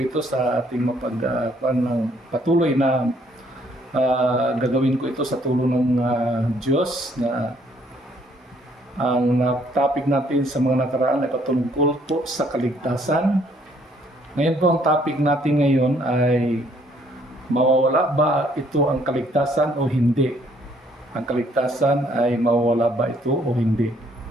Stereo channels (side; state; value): both; normal; correlation 0.65